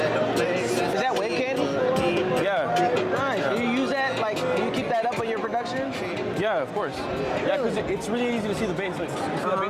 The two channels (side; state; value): both; identical; correlation 1.00